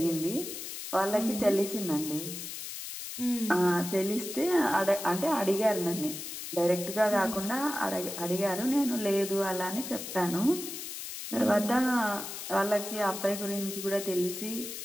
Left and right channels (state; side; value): noise; left; hiss, 8 dB below the sound